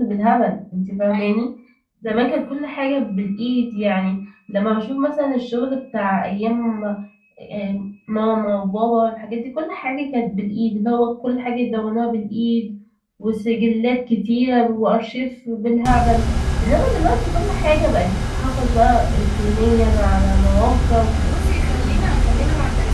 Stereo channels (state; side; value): identical; both; correlation 1.00